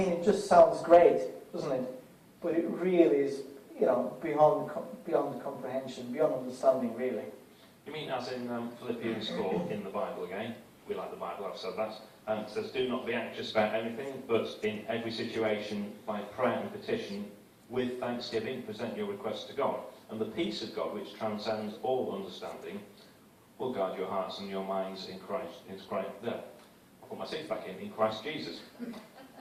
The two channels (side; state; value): both; identical; correlation 1.00